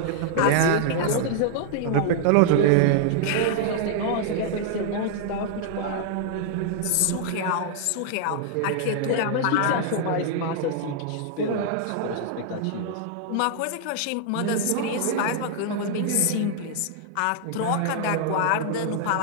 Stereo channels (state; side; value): different; both; correlation 0.00